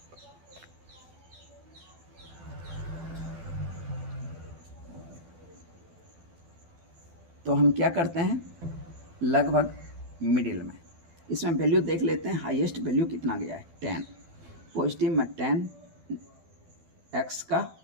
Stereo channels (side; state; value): left; late; 12 ms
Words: तो हम क्या करते हैं, लगभग मिडिल में इसमें वैल्यू देख लेते हैं, हाईएस्ट वैल्यू कितना गया है, 10, पॉजिटिव में 10 x का